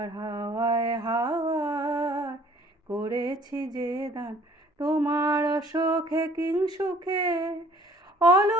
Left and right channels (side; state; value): both; normal; correlation 0.55